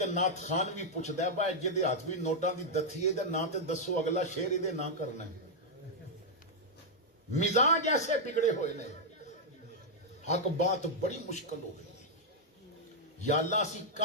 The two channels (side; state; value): both; normal; correlation -0.04